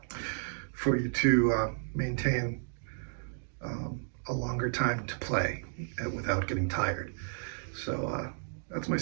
for you to maintain a longer time to play without getting tired. So that's my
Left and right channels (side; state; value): left; silent; digital silence